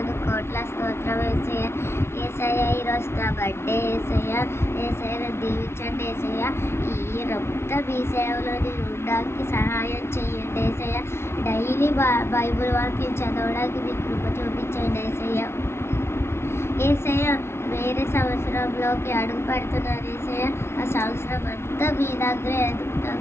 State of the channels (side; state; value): right; late; 0.12 ms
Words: కోట్ల స్తోత్రం యేసయ్య. యేసయ్య ఈరోజు నా బర్త్డే యేసయ్య. యేసయ్య నన్ను దీవించండి యేసయ్య. ఈ మొత్తం మీ సేవలో నేను ఉండడానికి సహాయం చేయండి యేసయ్య. డైలీ బైబుల్ వాక్యం చదవడానికి మీకు కృప చూపించండి యేసయ్య. యేసయ్య వేరే సంవత్సరంలోకి అడుగు పెడుతున్నాను యేసయ్య. ఆ సంవత్సరం అంతా మీ దగ్గర